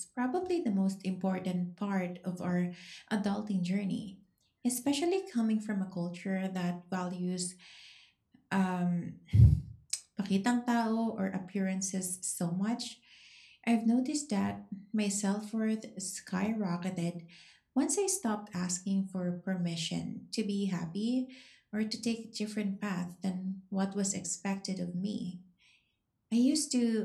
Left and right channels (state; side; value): identical; both; correlation 1.00